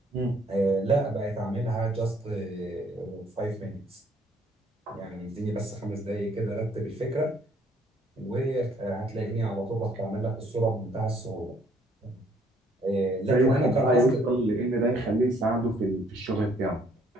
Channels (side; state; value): both; normal; correlation 0.63